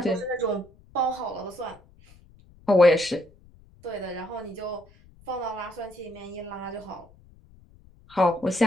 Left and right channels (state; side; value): noise; left; rumble, 26 dB below the sound